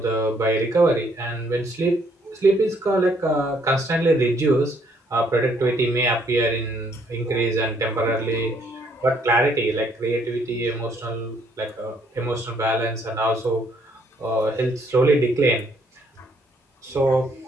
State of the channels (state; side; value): normal; both; correlation 0.67